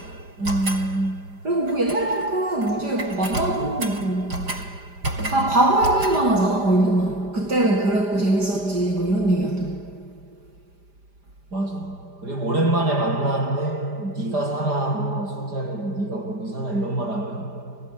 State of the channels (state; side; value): late; left; 5.0 ms